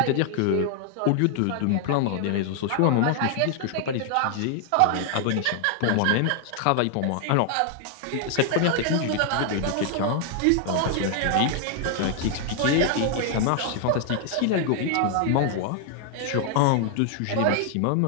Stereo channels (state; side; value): different; both; correlation 0.00